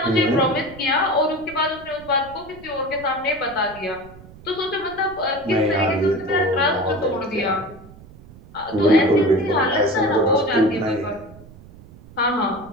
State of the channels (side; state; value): right; noise; rumble, 20 dB below the sound